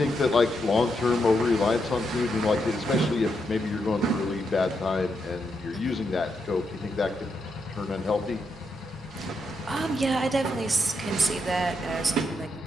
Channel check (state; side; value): normal; both; correlation 0.81